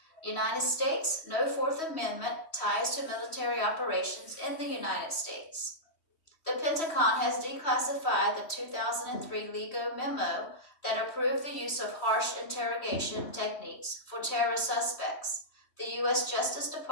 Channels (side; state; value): right; late; 3.1 ms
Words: United States, no Fourth Amendment ties to military operations in the United States. The Pentagon has declassified the 2003 LEGO memo that approved the use of harsh interrogation techniques for terrorist suspects. The U.S. Justice